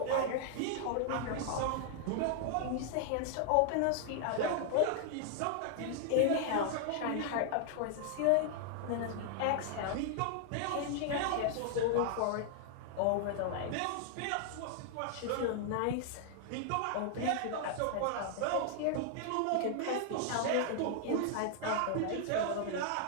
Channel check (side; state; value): both; different; correlation 0.00